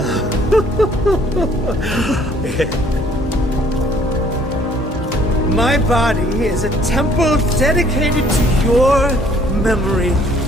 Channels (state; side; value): normal; both; correlation 0.60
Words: My body is a temple dedicated to your memory.